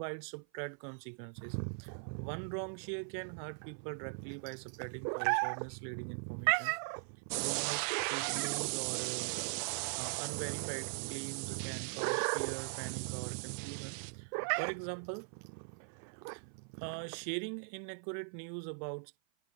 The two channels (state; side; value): silent; left; 51 dB below the other